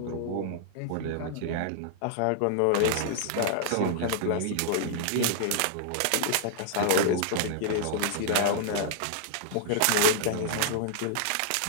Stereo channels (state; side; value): different; both; correlation -0.01